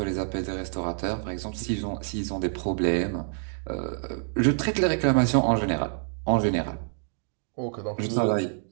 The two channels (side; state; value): left; silent; digital silence